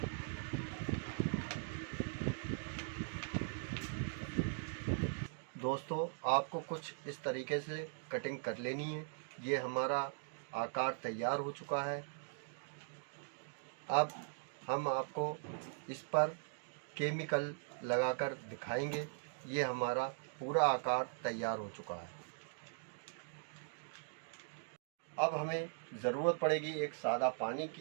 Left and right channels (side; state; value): left; silent; digital silence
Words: दोस्तों आपको कुछ इस तरीके से कटिंग कर लेनी है। ये हमारा आकार तैयार हो चुका है। अब हम आपको इस पर केमिकल लगाकर दिखाएंगे। ये हमारा पूरा आकार तैयार हो चुका है। अब हमें ज़रूरत पड़ेगी एक सादा पानी